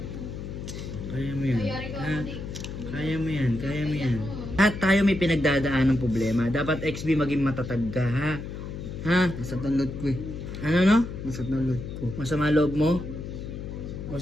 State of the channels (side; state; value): left; noise; hum, 8 dB below the sound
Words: Kaya mo yan. Ha? Kaya mo yan. Kaya mo yan. At tayo may pinagdadaan ng problema. Dapat XB maging matatag ka, ha? Ha? Masat ang load ko eh. Ano no? Masat ang load ko. Masama loob mo? O